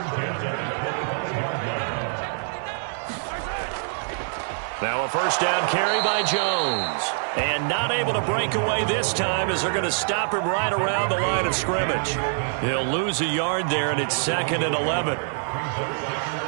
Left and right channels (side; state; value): left; silent; digital silence